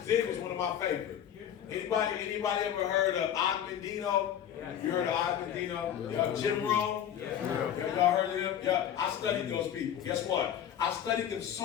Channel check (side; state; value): right; quieter; 9.8 dB